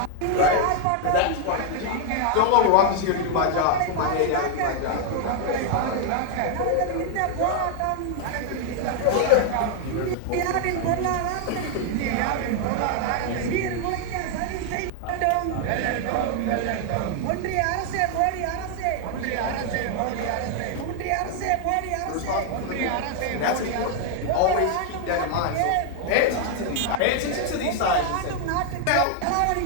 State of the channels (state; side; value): different; both; correlation 0.00